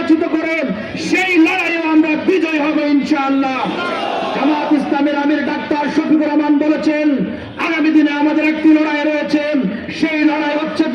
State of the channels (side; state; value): both; identical; correlation 1.00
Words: করে সেই লড়াইয়ে আমরা বিজয় হব ইনশাআল্লাহ। জামাত ইসলামের আমির ডাক্তার শফিকুর রহমান বলেছেন, আগামী দিনে আমাদের একটি লড়াই রয়েছে, সেই লড়াই হচ্ছে